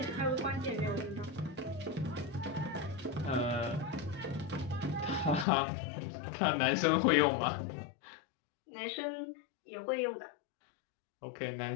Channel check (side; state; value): right; drops out; at 5.5 s